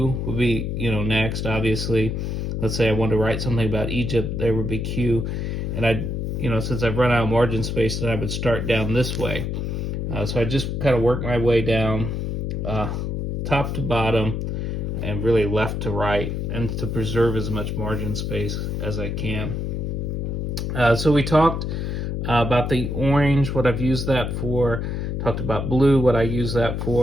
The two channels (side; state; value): left; noise; hum, 2 dB below the sound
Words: would be, next, obviously. Let's say I wanted to write something about Egypt, there would be Q. And I'd, since I've run out of margin space, then I would start down this way. So I just kind of work my way down top to bottom and really left to right, and to preserve as much margin space as I can. So we talked about the orange, what I've used that for, talked about blue, what I use that